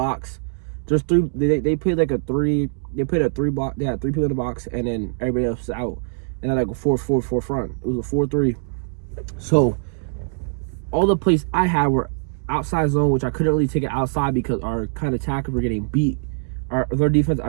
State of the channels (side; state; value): left; silent; 64 dB below the other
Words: there's 3. They played like a 3. They played a 3 block. They had 3 people in the box, and then everybody else is out. And then like a 4-4 front. It was a 4-3. So all the plays I had were outside zone, which I couldn't really take it outside because our kind of tackles were getting beat. Their defense,